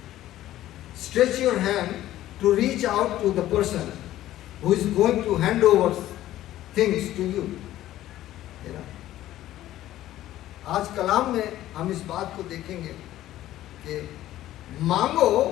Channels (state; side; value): quieter; right; 14.0 dB